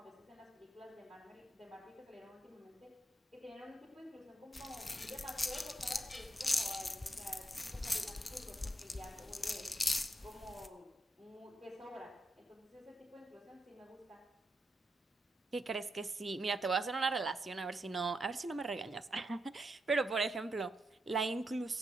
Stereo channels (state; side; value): normal; both; correlation 0.83